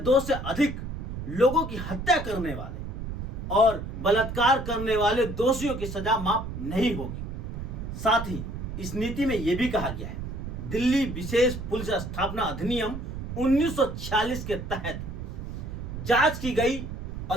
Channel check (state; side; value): noise; right; rumble, 7 dB below the sound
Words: से अधिक लोगों की हत्या करने वाले और बलात्कार करने वाले दोषियों की सजा माफ नहीं होगी। साथ ही इस नीति में यह भी कहा गया है, दिल्ली विशेष पुलिस स्थापना अधिनियम 1946 के तहत जांच की गई